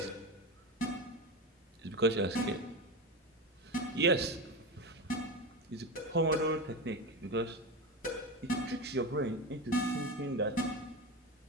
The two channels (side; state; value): both; normal; correlation 0.21